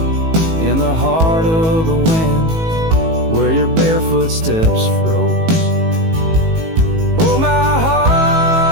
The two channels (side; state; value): left; late; 18 ms